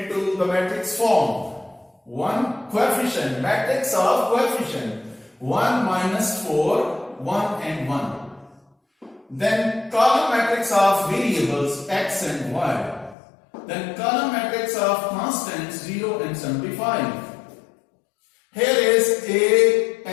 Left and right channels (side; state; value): right; drops out; at 13.2 s